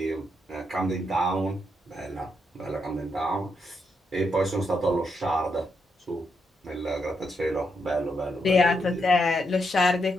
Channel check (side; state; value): both; normal; correlation 0.80